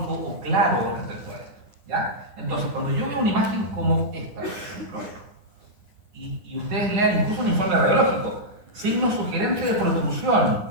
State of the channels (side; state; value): left; late; 9.7 ms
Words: o claro respecto a esto. ¿Ya? Entonces, cuando yo veo una imagen como esta, por ejemplo, y ustedes lean incluso un informe radiológico, signo sugerente de protrusión,